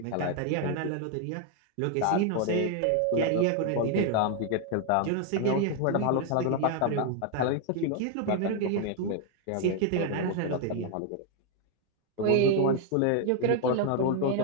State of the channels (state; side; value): different; both; correlation 0.00